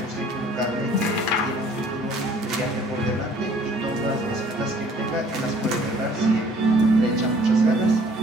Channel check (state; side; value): normal; both; correlation 0.56